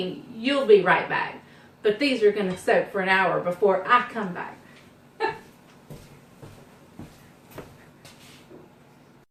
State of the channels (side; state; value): both; identical; correlation 1.00